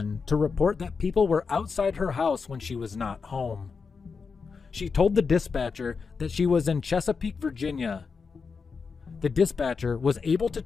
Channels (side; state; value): right; quieter; 5.2 dB